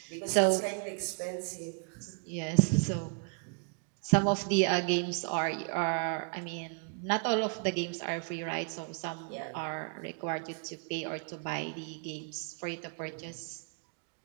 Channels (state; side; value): quieter; left; 39.6 dB